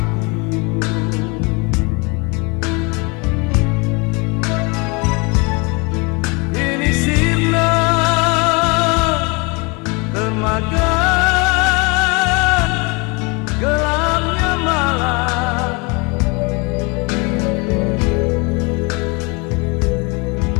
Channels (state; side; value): quieter; right; 29.3 dB